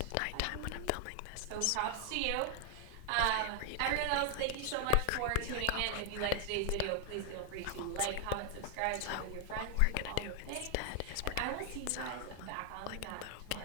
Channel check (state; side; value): different; both; correlation 0.00